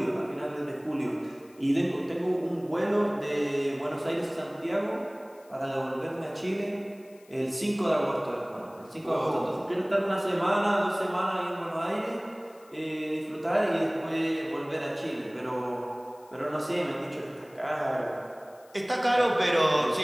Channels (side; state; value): left; noise; hiss, 28 dB below the sound